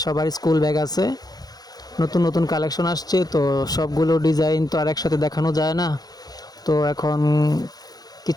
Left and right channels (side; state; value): right; late; 0.19 ms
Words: সবার স্কুল ব্যাগ আছে। নতুন নতুন কালেকশন আসছে, তো সবগুলো ডিজাইন তো আর একসাথে দেখানো যায় না। তো এখন